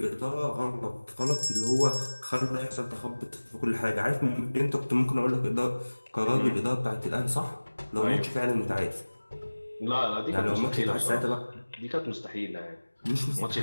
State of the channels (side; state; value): both; inverted; correlation -1.00